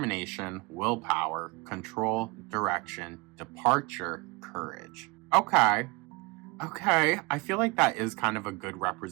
willpower, control, direction, departure, courage. Okay. I feel like that is kind of a good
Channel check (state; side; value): quieter; left; 27.2 dB